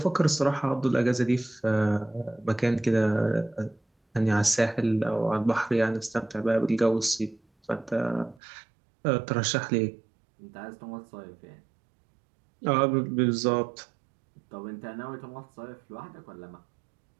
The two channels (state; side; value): drops out; left; at 8.4 s